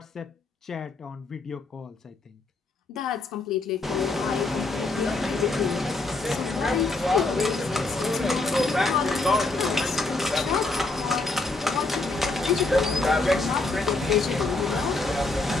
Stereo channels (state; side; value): quieter; right; 3.3 dB